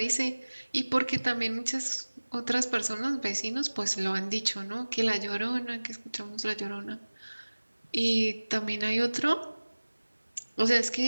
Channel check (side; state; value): both; inverted; correlation -1.00